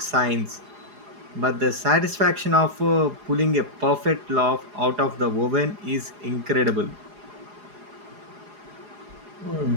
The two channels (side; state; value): left; late; 4.8 ms